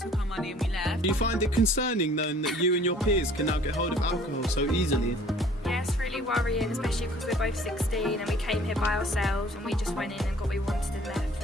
our money and we left. Do you find it concerning knowing that you and your peers can now get hold of alcohol so easily? Yeah, it's really worrying, especially because we're both 16 and we came here by ourselves and we just went in and got what we wanted and left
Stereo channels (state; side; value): normal; both; correlation 0.53